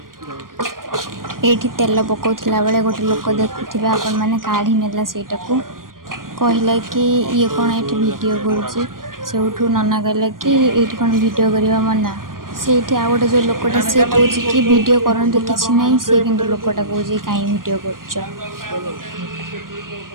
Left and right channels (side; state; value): left; late; 0.91 ms